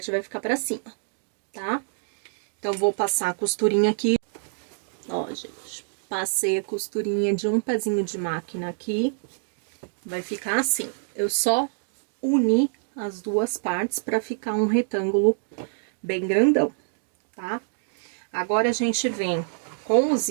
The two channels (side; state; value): left; silent; digital silence